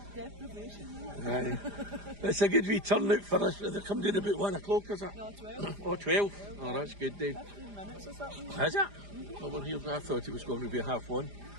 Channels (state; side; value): late; left; 4.9 ms